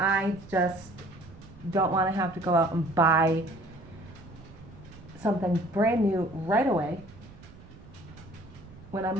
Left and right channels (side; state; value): right; noise; rumble, 20 dB below the sound